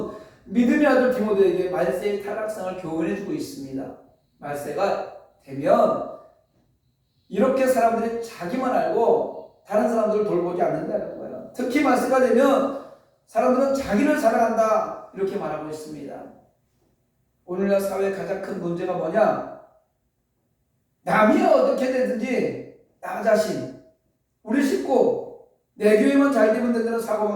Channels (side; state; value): both; identical; correlation 1.00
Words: 믿음의 아들 디모데에게 말세의 타락상을 교훈해 주고 있습니다. 말세가 되면 이렇게 사람들이 자기만 알고 다른 사람들을 돌보지 않는다는 거예요. 특히 말세가 되면 사람들은 자기를 사랑한다 이렇게 말하고 있습니다. 오늘날 사회의 가장 큰 문제가 뭐냐? 남이 어떻게 되든지 나 자신, 우리 식구, 내 교회만 잘 되면 된다는